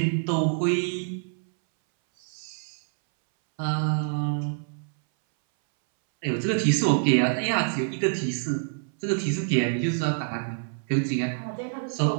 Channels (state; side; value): silent; left; 61 dB below the other